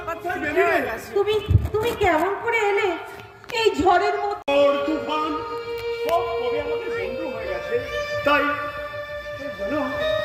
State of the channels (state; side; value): identical; both; correlation 1.00